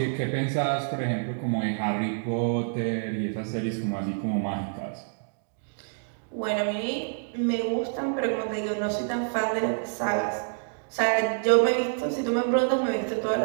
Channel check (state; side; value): silent; left; digital silence